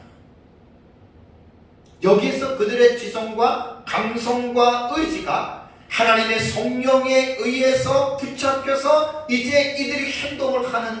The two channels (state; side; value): identical; both; correlation 1.00